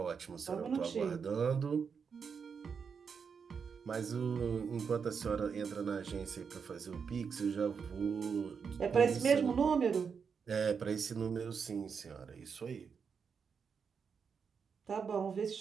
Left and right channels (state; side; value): quieter; left; 6.2 dB